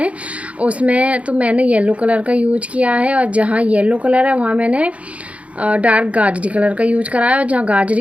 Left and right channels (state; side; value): late; left; 0.065 ms